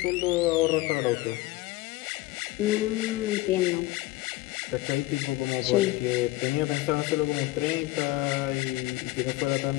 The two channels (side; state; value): right; quieter; 18.1 dB